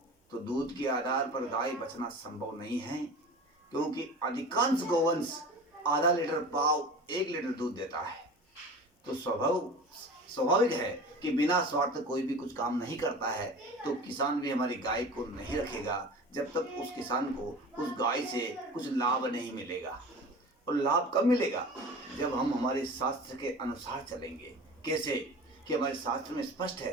तो दूध के आधार पर गाय बचना संभव नहीं है, क्योंकि अधिकांश गोवंश आधा लीटर पाव 1 लीटर दूध देता है। तो स्वाभाविक है कि बिना स्वार्थ कोई भी कुछ काम नहीं करता है। तो किसान भी हमारी गाय को नहीं रखेगा जब तक उस किसान को उस गाय से कुछ लाभ नहीं मिलेगा। और लाभ कब मिलेगा? जब हम हमारे शास्त्र के अनुसार चलेंगे। कैसे? कि हमारे शास्त्र में स्पष्ट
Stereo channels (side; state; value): both; normal; correlation 0.36